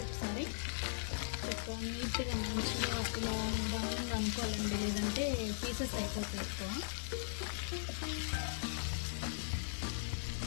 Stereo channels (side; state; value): right; silent; digital silence